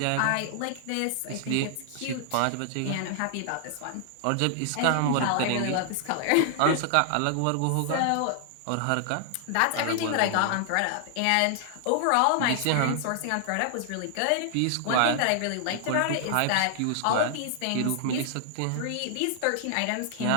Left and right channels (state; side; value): different; both; correlation 0.00